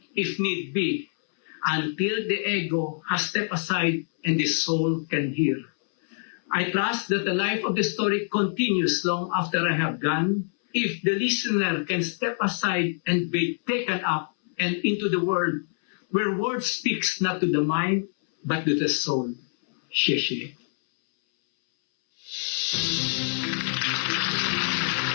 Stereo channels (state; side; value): silent; right; 61 dB below the other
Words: if need be, until the ego has stepped aside and the soul can hear. I trust that the life of the story continues long after I have gone, if the listener can step aside and be taken up and into the world, where word speaks not to the mind, but to the soul." Xie.